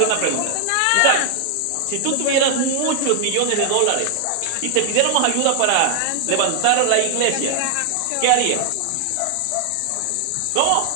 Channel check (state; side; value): different; both; correlation 0.00